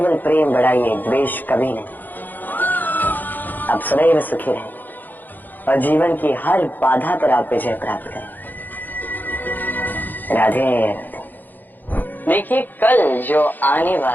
प्रेम बढ़ाइए, द्वेष कभी नहीं। आप सदैव सुखी रहें और जीवन की हर बाधा पर आप विजय प्राप्त करें। राधे राधे। देखिए, कल जो आने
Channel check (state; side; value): late; right; 0.087 ms